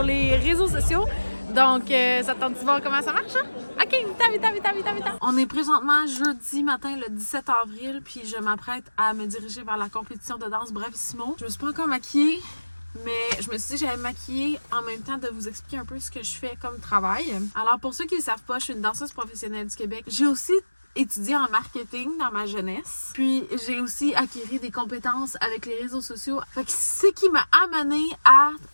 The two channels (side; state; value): both; inverted; correlation -1.00